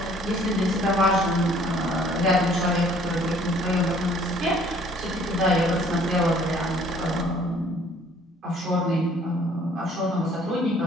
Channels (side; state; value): both; normal; correlation 0.57